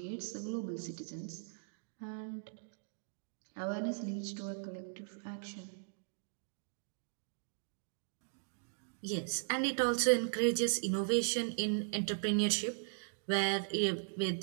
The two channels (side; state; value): left; silent; digital silence